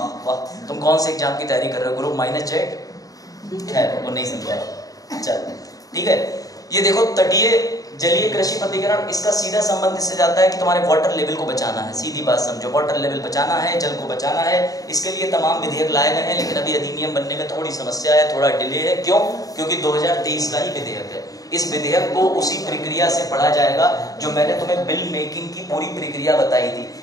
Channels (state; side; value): late; right; 0.17 ms